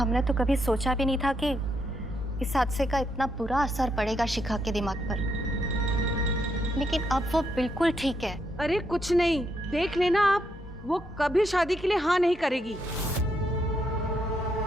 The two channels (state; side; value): normal; both; correlation 0.78